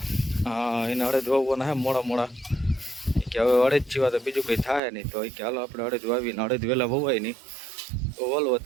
હા, એને અડદ વાવવાના હે મોડા કે હવે અડદ જીવા તો બીજું કંઈ થાય નહીં. તો કે હાલો આપણે અડદ વાવીને અડદ વહેલા વવાય નહીં તો વલ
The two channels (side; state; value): left; drops out; at 4.8 s